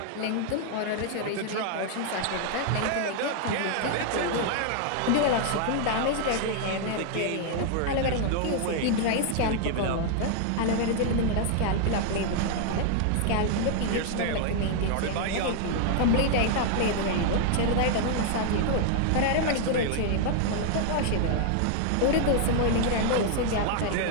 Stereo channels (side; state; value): both; different; correlation 0.00